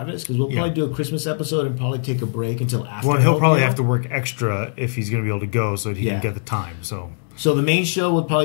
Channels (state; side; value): silent; right; 65 dB below the other